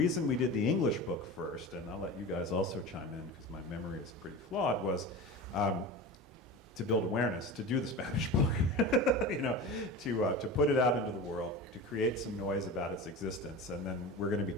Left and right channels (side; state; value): both; normal; correlation 0.30